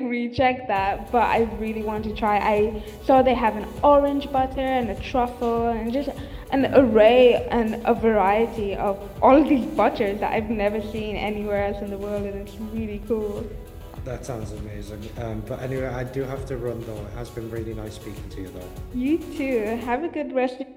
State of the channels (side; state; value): both; identical; correlation 1.00